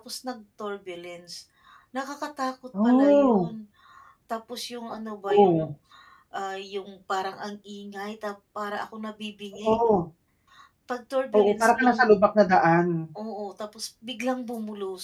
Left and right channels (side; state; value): both; identical; correlation 1.00